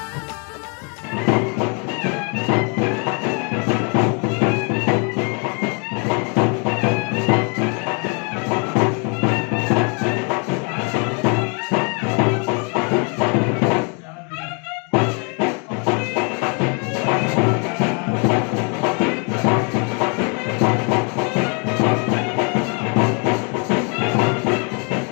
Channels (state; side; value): quieter; right; 36.4 dB